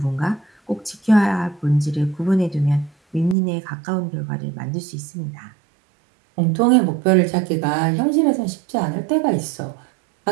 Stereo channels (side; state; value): left; drops out; at 3.4 s